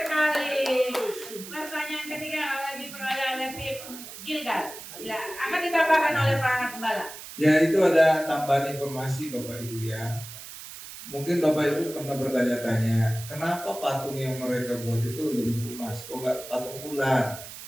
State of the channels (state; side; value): noise; right; hiss, 13 dB below the sound